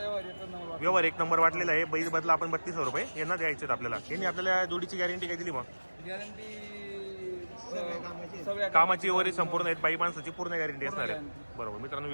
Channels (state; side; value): inverted; both; correlation -1.00